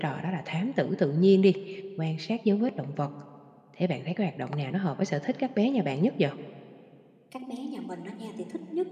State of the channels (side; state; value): both; identical; correlation 1.00